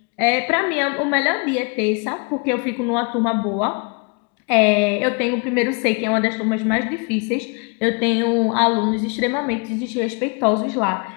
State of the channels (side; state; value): right; quieter; 34.0 dB